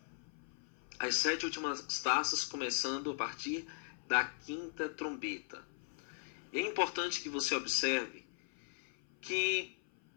as 7 últimas taças, começando a partir da 5ª trombeta. É importante que você observe que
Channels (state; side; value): silent; right; 52 dB below the other